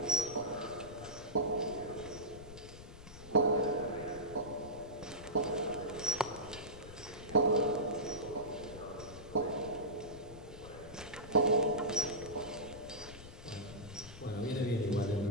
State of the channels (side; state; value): left; noise; rumble, 15 dB below the sound